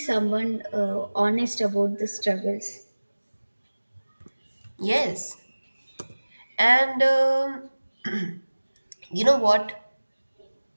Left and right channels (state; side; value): inverted; both; correlation -1.00